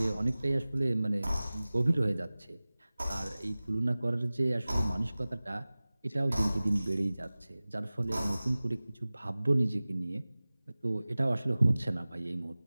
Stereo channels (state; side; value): inverted; both; correlation -0.98